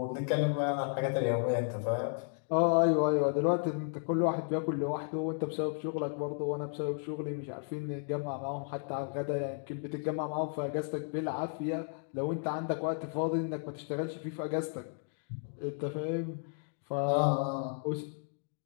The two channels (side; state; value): right; silent; 55 dB below the other